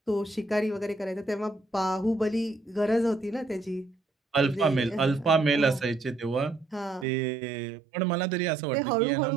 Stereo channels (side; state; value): left; drops out; at 7.1 s